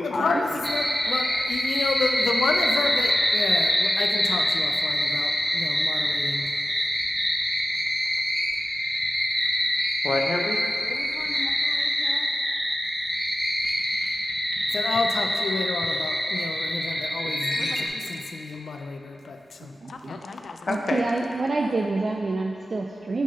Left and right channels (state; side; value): normal; both; correlation 0.93